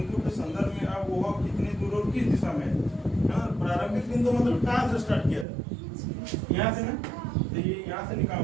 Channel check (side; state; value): left; drops out; at 5.5 s